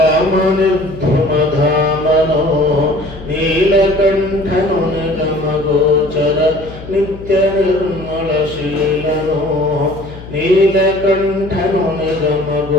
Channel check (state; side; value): noise; left; hum, 15 dB below the sound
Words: ನೀಲಕಂಠನು ನಿಗಮಗೋಚರ ನಿತ್ಯ ನಿರ್ಮಳಶೀಲನೋ ನೀಲಕಂಠನು